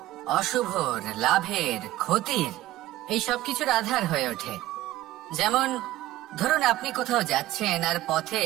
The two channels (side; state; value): left; quieter; 15.5 dB